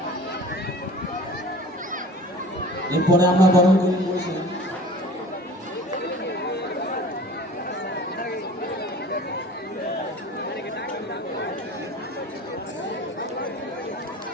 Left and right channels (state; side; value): normal; both; correlation 0.43